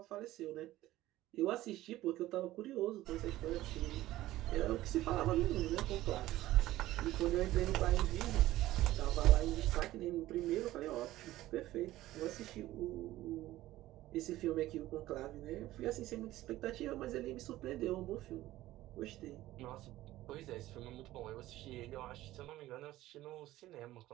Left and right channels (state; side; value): quieter; left; 15.7 dB